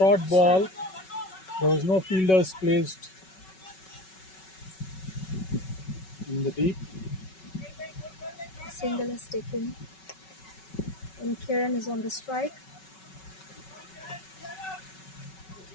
ball. There was no fielders placed in the deep. Single is taken. And Kiran is on the strike.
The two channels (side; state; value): right; late; 5.3 ms